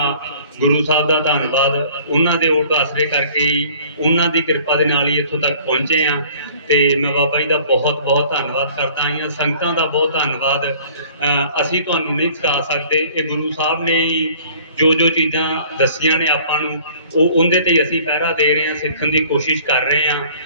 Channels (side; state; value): both; inverted; correlation -0.52